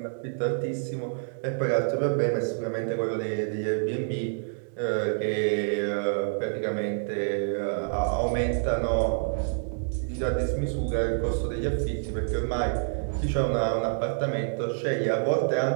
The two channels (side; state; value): left; silent; digital silence